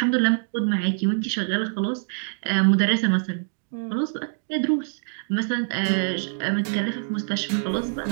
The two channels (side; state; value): left; silent; digital silence